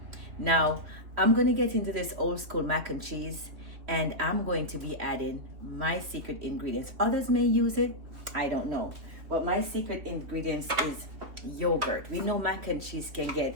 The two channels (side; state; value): left; late; 3.3 ms